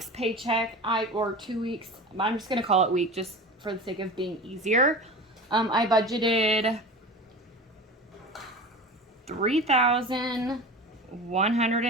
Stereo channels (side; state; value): both; normal; correlation 0.32